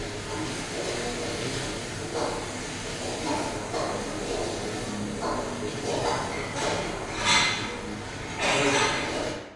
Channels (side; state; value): both; identical; correlation 1.00